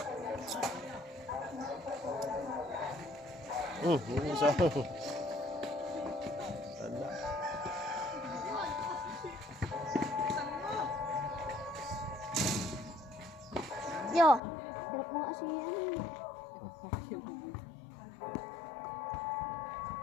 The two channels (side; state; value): right; drops out; at 14.4 s